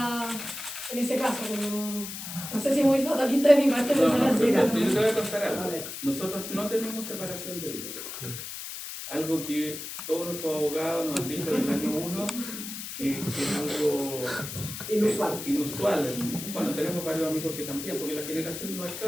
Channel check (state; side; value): noise; left; hiss, 8 dB below the sound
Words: en ese caso, como no sé si es muy fatalista de mi parte pensar así. Yo te voy a contar algo. Nosotros no tenemos separación de bienes. Algo que todos nuestros abogados nos han dicho desde el año 1, que es algo inusual. Bueno, tenemos varios amigos que también, porque la generación